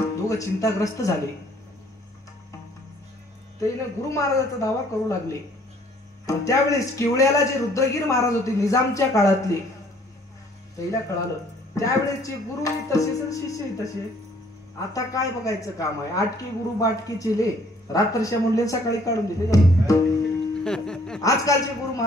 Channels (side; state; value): both; normal; correlation 0.60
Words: चिंताग्रस्त झाले. त्याने गुरु महाराजाचा दावा करू लागले. त्यावेळेस केवळ्याला जे रुद्रगीर महाराज होते निजामच्या काळातले, त्याला कळालं त्यावेळेसचे गुरुही तसेच शिष्यही तसे. आता काय बघायचं काम आहे? आटकी गुरु बाटकी चिले, रात्रच्या म्हणले सकाळी काढून दिले. आजकालचे गुरु